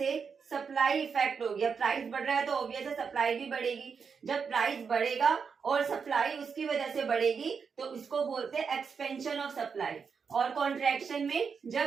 सप्लाई इफेक्ट हो गया, प्राइस बढ़ रहा है तो ऑब्वियस है सप्लाई भी बढ़ेगी। जब प्राइस बढ़ेगा और सप्लाई उसकी वजह से बढ़ेगी तो इसको बोलते हैं एक्सपेंशन ऑफ सप्लाई। और कॉन्ट्रैक्शन में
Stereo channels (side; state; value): left; quieter; 5.9 dB